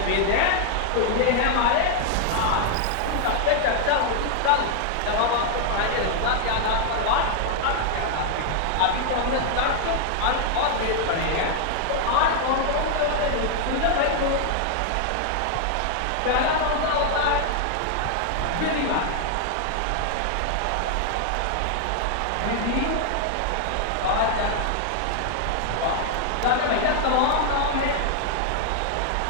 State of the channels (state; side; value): different; both; correlation 0.00